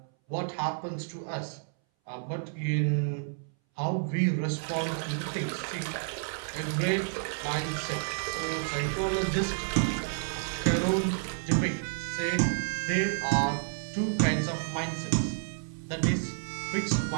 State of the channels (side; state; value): left; silent; 58 dB below the other